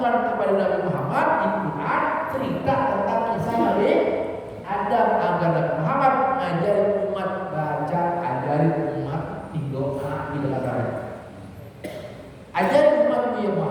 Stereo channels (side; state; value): both; identical; correlation 1.00